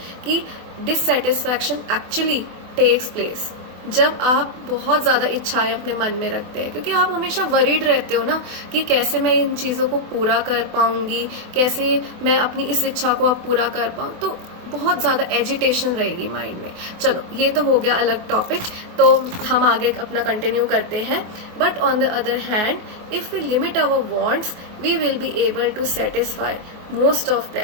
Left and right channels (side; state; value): left; late; 24 ms